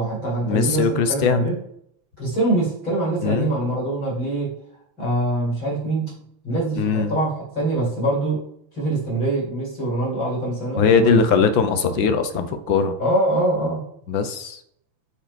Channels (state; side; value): late; left; 5.9 ms